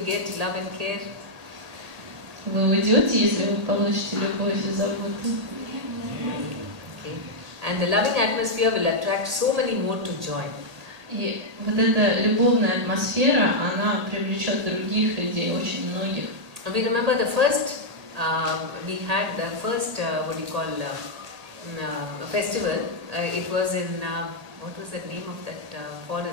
get love and care? Вы уйдете, если вы получите любовь и заботу? Okay. And the loving atmosphere will attract so many more to join. И вот эта любовная атмосфера, она привлечет других людей, очень многих. We remember the first, we had the first, festival. It was in, what was the name of that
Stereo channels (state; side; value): late; left; 1.8 ms